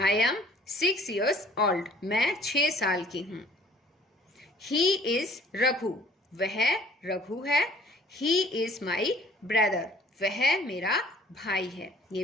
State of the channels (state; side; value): normal; both; correlation 0.53